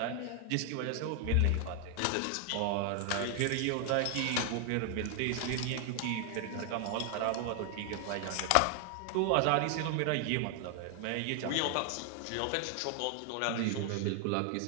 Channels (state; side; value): different; both; correlation 0.00